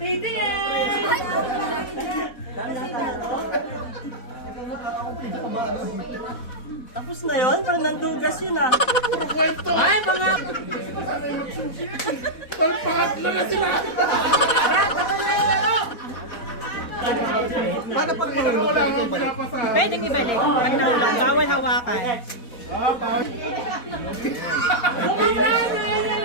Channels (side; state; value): right; late; 4.1 ms